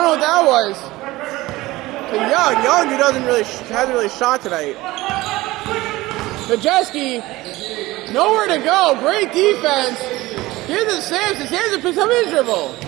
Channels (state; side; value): quieter; left; 19.0 dB